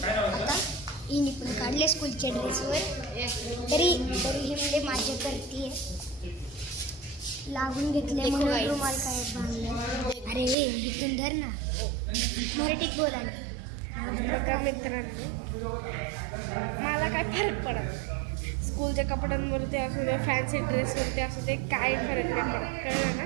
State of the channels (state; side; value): drops out; left; at 10.6 s